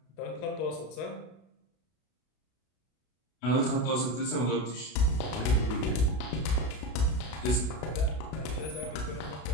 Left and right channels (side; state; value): right; late; 32 ms